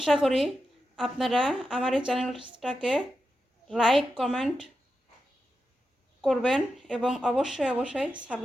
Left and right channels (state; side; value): normal; both; correlation 0.89